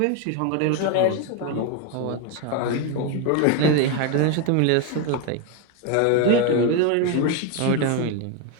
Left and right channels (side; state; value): both; different; correlation 0.01